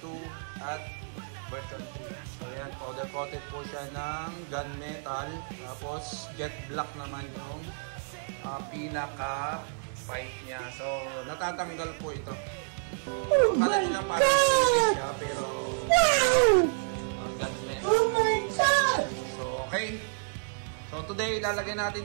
at version 3. So yan, powder coated po siya ng gunmetal. Tapos jet black naman yung pinaka pipe niya. So natatanggal po ito. Oh my God! Siya, pero gunmetal. Oh my God! So okay. So today ilalagay natin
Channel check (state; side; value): silent; left; digital silence